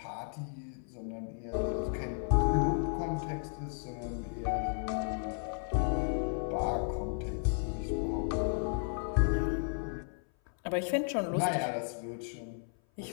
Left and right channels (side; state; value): right; silent; 55 dB below the other